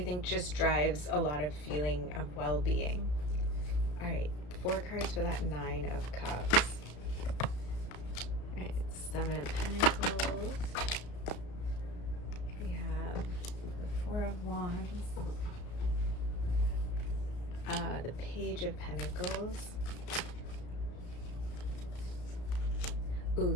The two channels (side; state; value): right; late; 34 ms